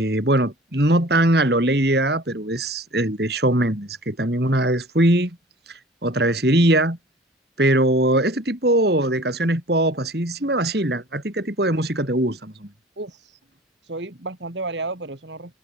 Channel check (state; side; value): normal; both; correlation 0.45